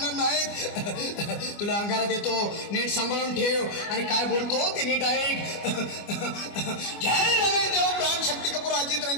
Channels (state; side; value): late; right; 25 ms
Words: नाहीत. तुला अंगारा देतो, नीट सांभाळून ठेव आणि काय बोलतो ते नीट ऐक. जय रमेश देव, प्राण, शक्ती कपूर, अजित,